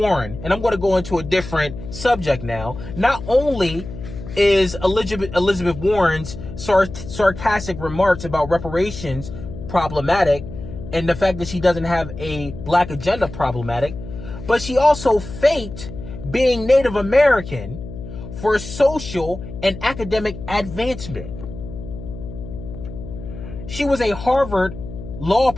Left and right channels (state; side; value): noise; left; hum, 11 dB below the sound